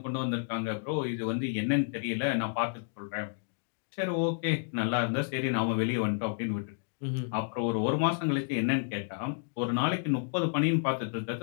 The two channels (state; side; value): silent; right; digital silence